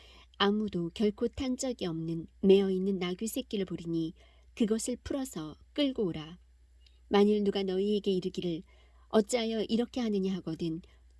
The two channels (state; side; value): identical; both; correlation 1.00